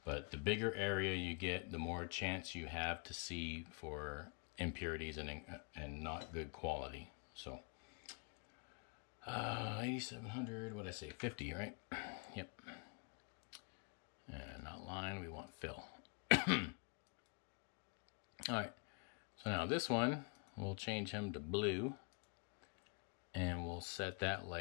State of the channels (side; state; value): right; quieter; 34.9 dB